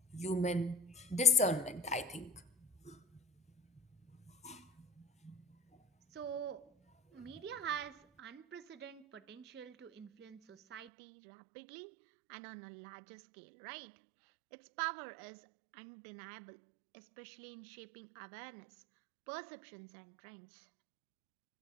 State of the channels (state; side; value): drops out; left; at 10.9 s